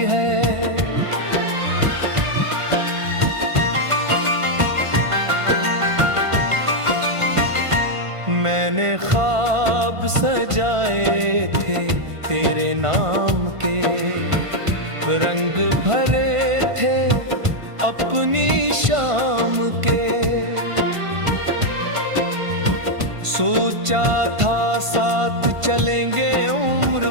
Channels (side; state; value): left; late; 1.5 ms